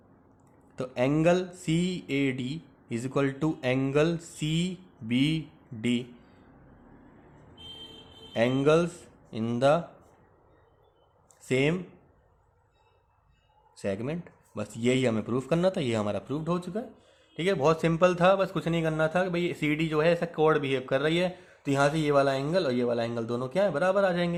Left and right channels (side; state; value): both; identical; correlation 1.00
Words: तो angle C A D is equal to angle C B D, angles in the same segment. बस यही हमें प्रूफ करना था, ये हमारा प्रूफ्ड हो चुका है, ठीक है। बहुत सिंपल था, बस कुछ नहीं करना था कि भाई सी डी जो है ऐसा कॉर्ड बिहेव कर रही है, तो यहाँ से ये वाला एंगल और ये वाला एंगल दोनों क्या है बराबर आ